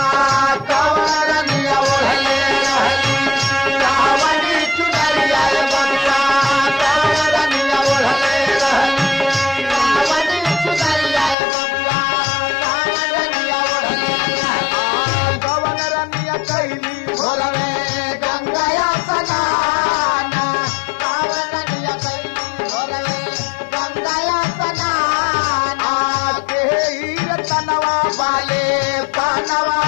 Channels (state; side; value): drops out; right; at 11.4 s